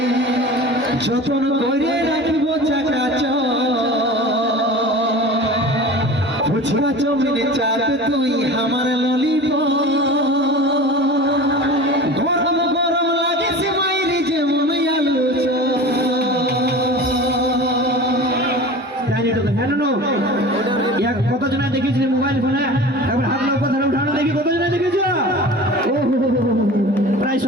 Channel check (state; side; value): normal; both; correlation 0.36